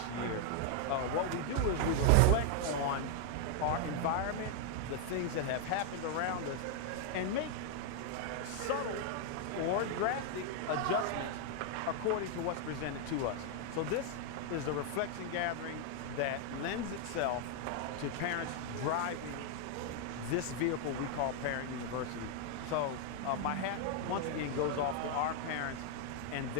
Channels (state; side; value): different; both; correlation 0.00